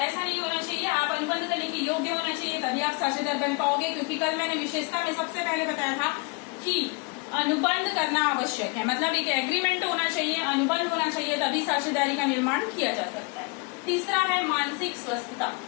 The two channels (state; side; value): quieter; right; 29.1 dB